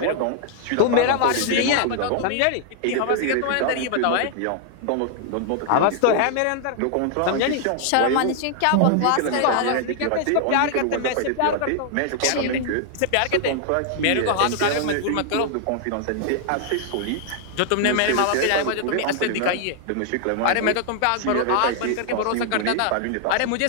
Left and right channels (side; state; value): both; different; correlation 0.00